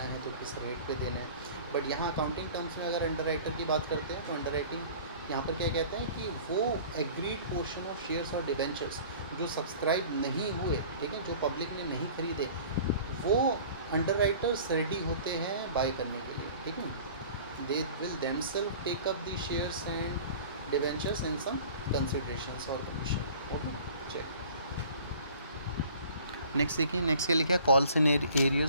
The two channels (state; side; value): inverted; both; correlation -0.46